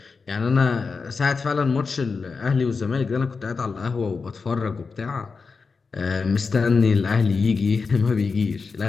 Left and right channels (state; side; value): quieter; right; 4.8 dB